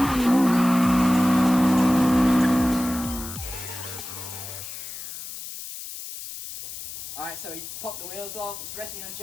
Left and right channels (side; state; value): left; noise; hiss, 10 dB below the sound